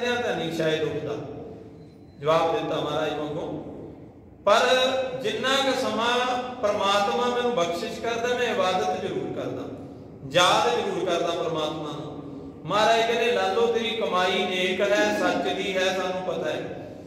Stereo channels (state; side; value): identical; both; correlation 1.00